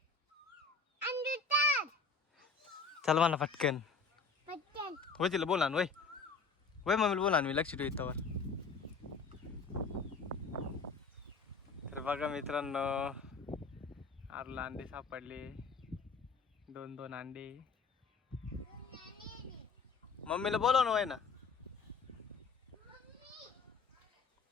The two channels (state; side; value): quieter; right; 4.6 dB